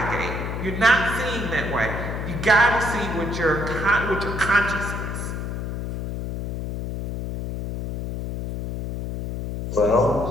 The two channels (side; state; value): left; noise; hum, 5 dB below the sound